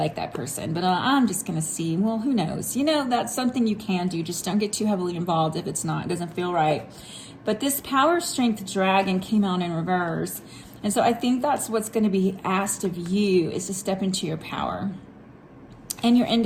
that person, but I'm just going to see. Well, who knows? You know, that's something you can do. Just don't get too heavily involved if it doesn't feel right. But this Power, Strength, Dragon came out in reverse. And so I think that's what's going to be asked of you, is to step into your power and your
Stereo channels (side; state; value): both; identical; correlation 1.00